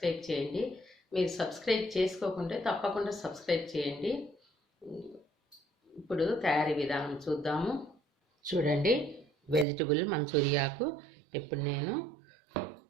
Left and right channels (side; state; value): left; drops out; at 9.7 s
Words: చేయండి. మీరు సబ్స్క్రైబ్ చేసుకోకుంటే తప్పకుండా సబ్స్క్రైబ్ చేయండి. ఇప్పుడు తయారీ విధానం చూద్దాము. చూడండి, వెజిటబుల్ మంచూరియాకు ఇప్పుడు నేను